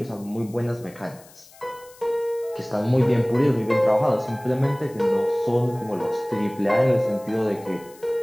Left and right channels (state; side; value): noise; left; hiss, 24 dB below the sound